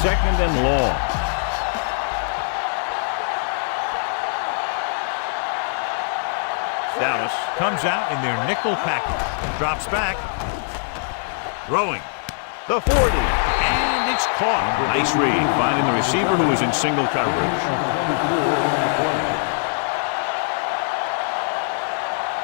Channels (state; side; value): silent; right; digital silence